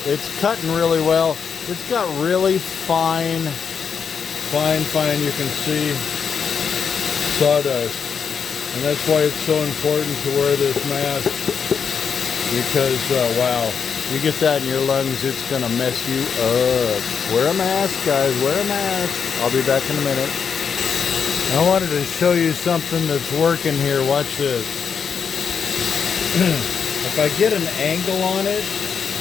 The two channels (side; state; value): right; quieter; 6.6 dB